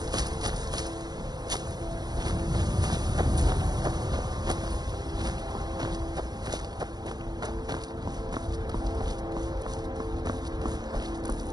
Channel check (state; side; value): late; left; 0.19 ms